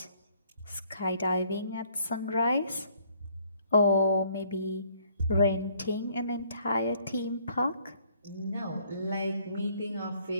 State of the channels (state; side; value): inverted; both; correlation -0.64